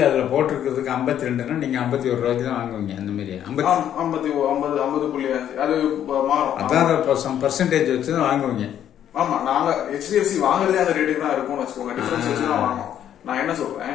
அதுல போட்டிருக்கிறதுக்கு 52ன்னா நீங்க 51 ரூபாய்க்கு தான் வாங்குவீங்க. அந்த மாதிரி 50.5 அது மாறும். அதான் பர்சன்டேஜ் வச்சு தான் வாங்குவீங்க. ஆமா, நாங்க HDFC வாங்குறதே அந்த ரேட்டுக்கு தான் இருக்கும்னு வச்சுக்கோங்க. டிஃபரன்ஸ் வச்சு தான் வாங்குவோம். நான் என்ன சொல்றேன்,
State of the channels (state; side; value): quieter; right; 10.3 dB